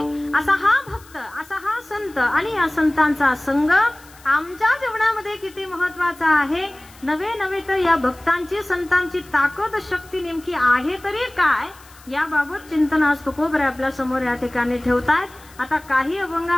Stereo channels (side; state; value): left; noise; hiss, 24 dB below the sound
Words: असा हा भक्त, असा हा संत आणि या संतांचा संग आमच्या जीवनामध्ये किती महत्वाचा आहे. नवे नवे तर या भक्तांची संतांची ताकद शक्ती नेमकी आहे तरी काय याबाबत चिंतन आज तुकोबर आपल्या समोर या ठिकाणी ठेवतायत. आता काही